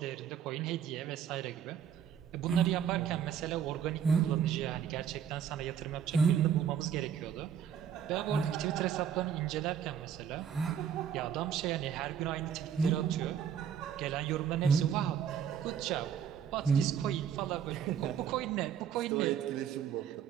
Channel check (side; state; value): left; quieter; 8.5 dB